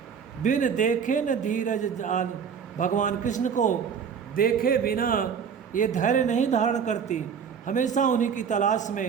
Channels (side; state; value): left; quieter; 7.1 dB